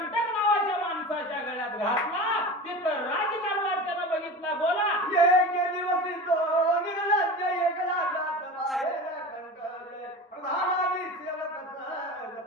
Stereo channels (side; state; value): both; normal; correlation 0.31